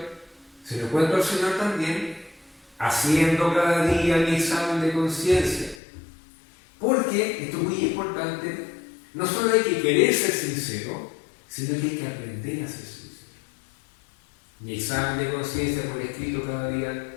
Se lo cuento al Señor también haciendo cada día mi examen de conciencia. Porque, esto es muy importante, no solo hay que querer ser sincero, sino que hay que aprender a ser sincero. Mi examen de conciencia por escrito cada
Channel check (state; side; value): drops out; right; at 5.8 s